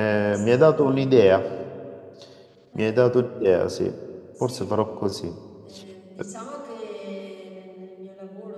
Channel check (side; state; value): both; identical; correlation 1.00